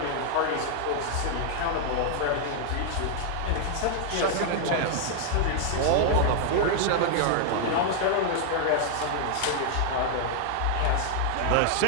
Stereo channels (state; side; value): different; both; correlation 0.00